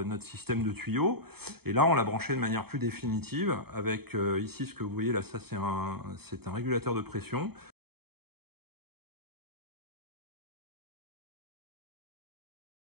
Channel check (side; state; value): left; late; 0.96 ms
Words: notre système de tuyaux. Et là on l'a branché de manière plus définitive avec ici ce que vous voyez là, ça c'est un régulateur de pression.